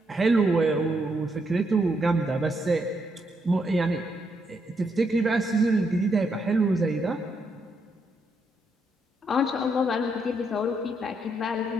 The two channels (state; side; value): normal; both; correlation 0.77